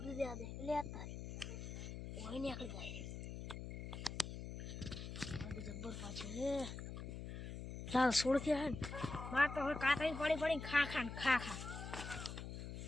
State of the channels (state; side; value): noise; left; hum, 7 dB below the sound